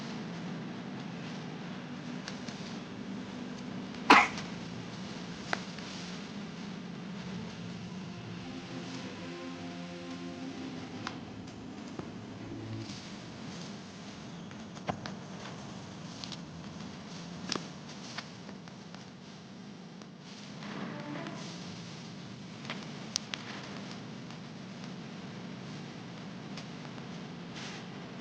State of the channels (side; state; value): both; identical; correlation 1.00